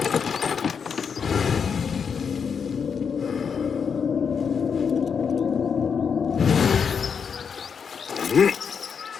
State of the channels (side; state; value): right; quieter; 6.5 dB